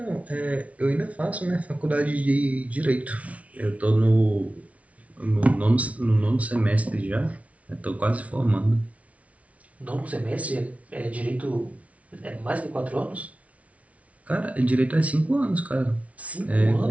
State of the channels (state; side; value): late; left; 0.066 ms